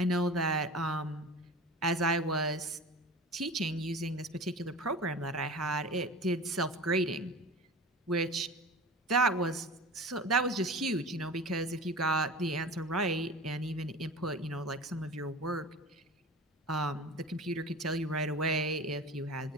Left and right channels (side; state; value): both; normal; correlation 0.35